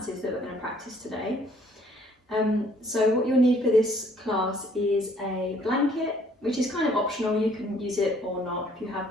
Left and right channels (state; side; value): normal; both; correlation 0.61